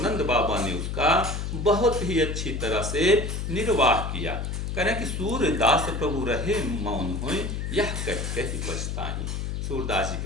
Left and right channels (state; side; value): noise; left; hum, 3 dB below the sound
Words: बाबा ने उसका बहुत ही अच्छी तरह से निर्वाह किया। करें कि सूरदास प्रभु रहे मौन होए, यह कह कह पछताहि। सूरदास जी